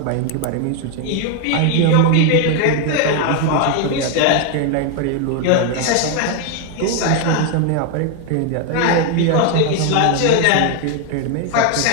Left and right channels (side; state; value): both; different; correlation 0.01